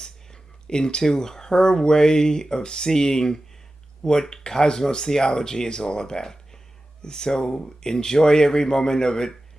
into her way of seeing what cosmos theology is all about. So enjoy every moment of it,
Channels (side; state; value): both; normal; correlation 0.94